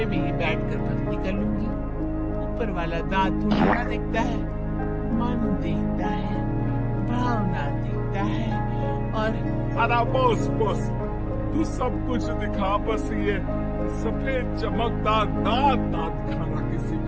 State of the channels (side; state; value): both; identical; correlation 1.00